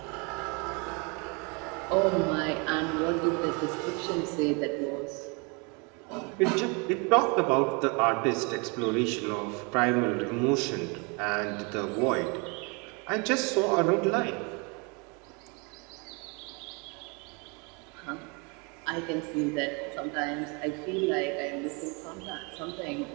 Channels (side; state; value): left; quieter; 31.5 dB